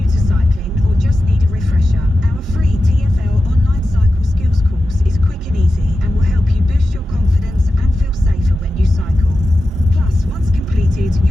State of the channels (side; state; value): both; normal; correlation 0.92